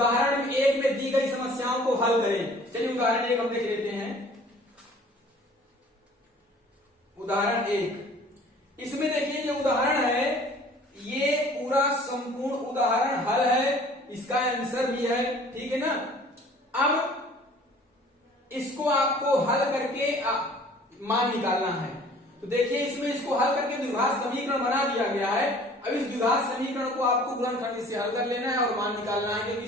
1 में दी गई समस्याओं को हल करें। चलिए उदाहरण 1 हम देख लेते हैं। उदाहरण 1, इसमें देखिए ये उदाहरण है, ये पूरा संपूर्ण उदाहरण हल है, इसका आंसर भी है, ठीक है ना। अब इसको आपको हल करके मान निकालना है, तो देखिए इसमें इसको हल करके द्विघात समीकरण बना दिया गया है। अब इस द्विघात समीकरण को आपको गुणनखंड से हल कर लेना है और मान निकालना है, क्योंकि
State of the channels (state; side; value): normal; both; correlation 0.51